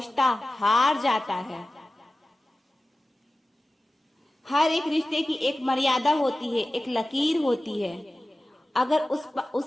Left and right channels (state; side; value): normal; both; correlation 0.96